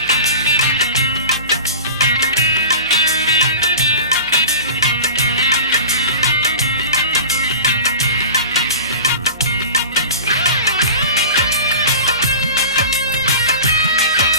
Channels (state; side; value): inverted; both; correlation -0.35